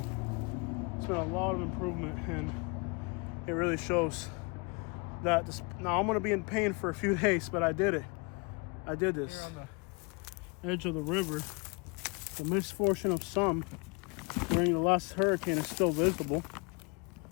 It's been a lot of improvement, and it really shows that this, now I'm going to be in pain for a few days, but I did it. I did this. Here on the edge of the river, the misfortune of some during the last hurricane is still visible.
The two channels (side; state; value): right; quieter; 31.4 dB